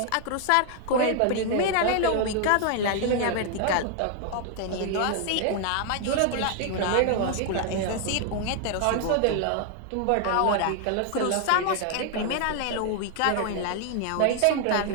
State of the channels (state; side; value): different; both; correlation 0.00